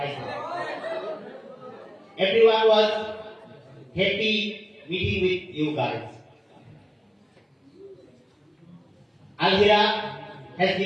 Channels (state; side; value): identical; both; correlation 1.00